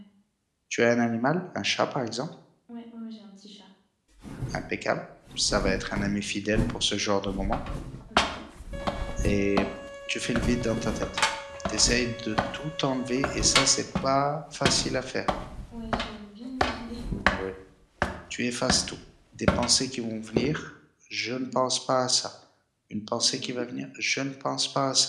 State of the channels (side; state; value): both; identical; correlation 1.00